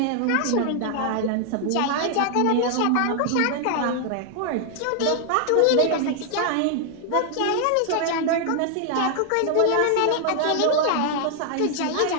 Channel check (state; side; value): different; both; correlation 0.00